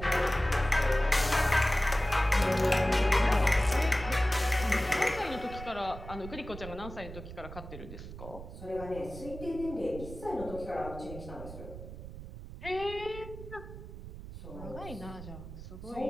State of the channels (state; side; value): noise; right; rumble, 12 dB below the sound